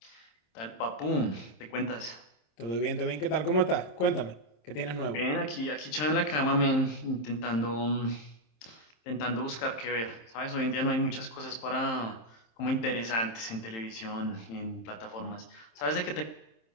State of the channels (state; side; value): late; right; 27 ms